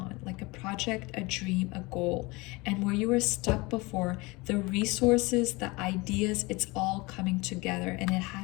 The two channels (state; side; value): quieter; right; 24.1 dB